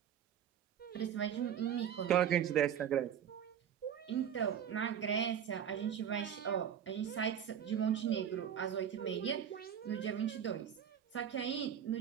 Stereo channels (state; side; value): quieter; left; 8.9 dB